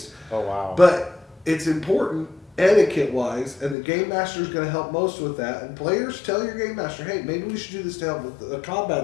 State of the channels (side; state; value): right; drops out; at 3.8 s